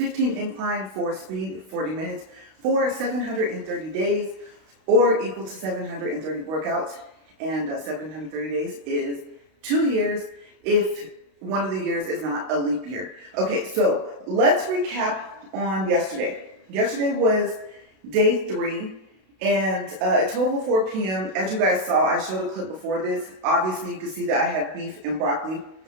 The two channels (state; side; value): late; left; 32 ms